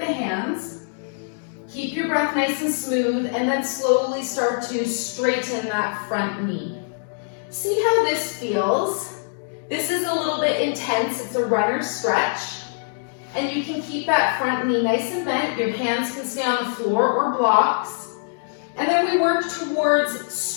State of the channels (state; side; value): silent; right; digital silence